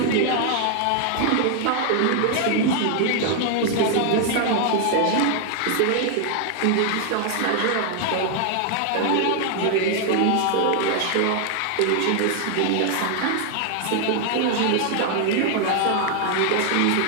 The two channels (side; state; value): both; different; correlation 0.00